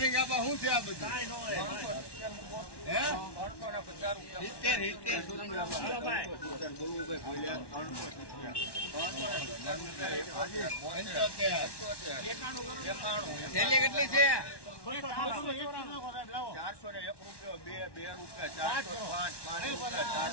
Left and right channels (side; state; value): right; late; 1.1 ms